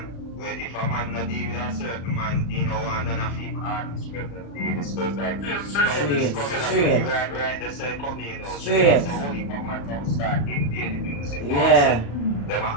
Well, if a man not deal with a certain man, you know, and none of him artists present deal, it's just like Straight. right, they say come in, Straight. so what if a man don't start invading music? Yeah. Them are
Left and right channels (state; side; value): late; right; 35 ms